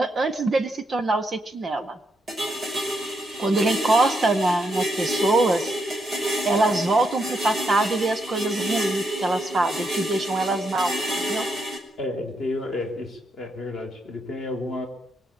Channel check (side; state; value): both; normal; correlation 0.80